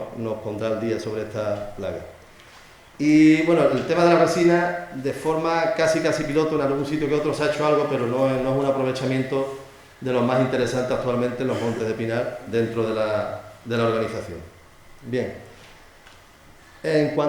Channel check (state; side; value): identical; both; correlation 1.00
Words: pondrá al día sobre esta plaga. Y bueno, el tema de la resina, de forma casi piloto, en algún sitio que otro se ha hecho algo, pero no es un aprovechamiento de los más interesantes actualmente en los montes de pinar dentro de la organización. Bien, en